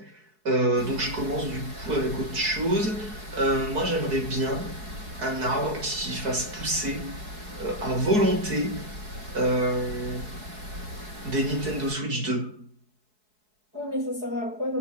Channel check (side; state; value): left; late; 4.7 ms